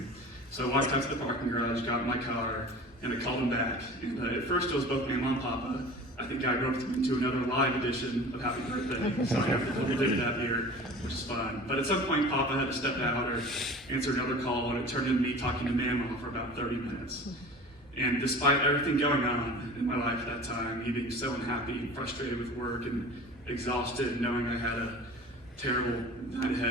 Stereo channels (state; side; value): normal; both; correlation 0.40